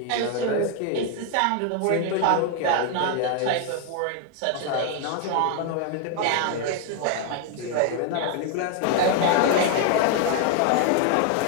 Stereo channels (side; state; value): both; different; correlation 0.01